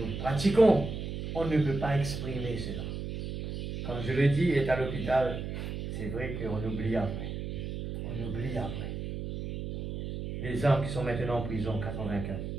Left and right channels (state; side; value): noise; right; hum, 5 dB below the sound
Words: pratiquons, on ne peut pas exprimer cela. Comme je le dis, il est à l'hôpital, c'est vrai qu'on oublie après. On oublie après. Les hommes qui sont maintenant en prison, 84.